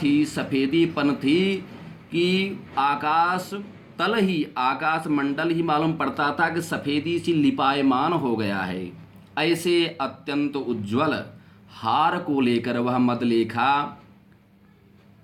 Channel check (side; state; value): both; identical; correlation 1.00